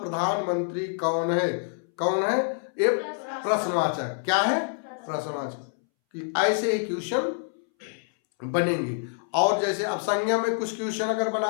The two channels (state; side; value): silent; right; 60 dB below the other